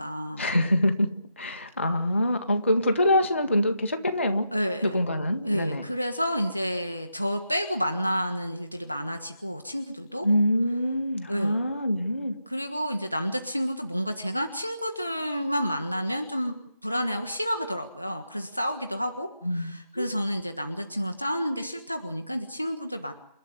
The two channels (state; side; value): inverted; both; correlation -0.84